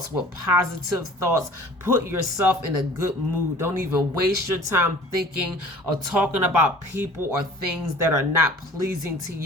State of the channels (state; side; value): normal; both; correlation 0.47